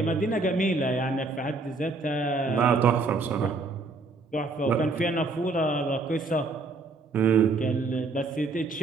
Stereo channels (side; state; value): left; quieter; 3.7 dB